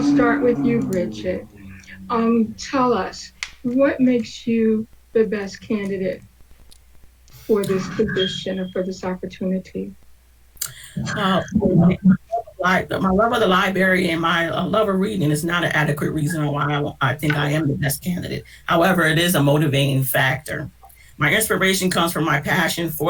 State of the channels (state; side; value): identical; both; correlation 1.00